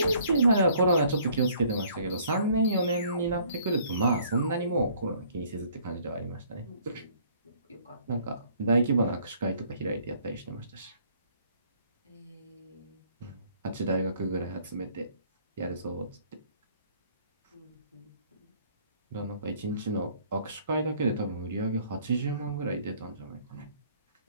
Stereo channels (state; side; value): inverted; both; correlation -0.59